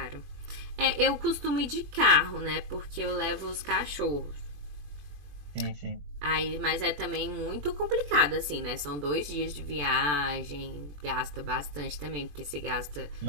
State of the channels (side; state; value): left; late; 21 ms